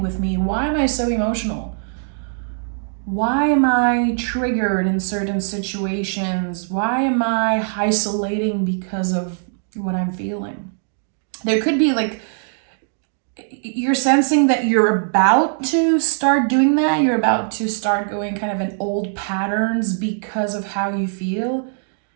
with me? Why am I so emotional? Why am I triggered in certain situations? Why am I isolating because of what I'm feeling? There could be like, you're sensing that you're about to start doing that. You're about to start going kind of in old patterns because of how you feel.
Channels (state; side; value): silent; left; digital silence